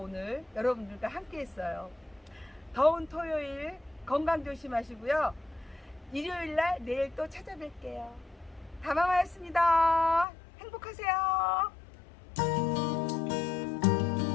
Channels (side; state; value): right; drops out; at 10.2 s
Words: 여러분들과 함께 했어요. 더운 토요일 건강 조심하시고요. 일요일날 내일 또 찾아뵐게요. 다마마였습니다. 행복하세요.